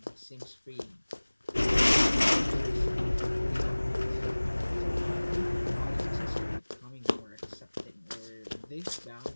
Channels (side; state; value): both; inverted; correlation -1.00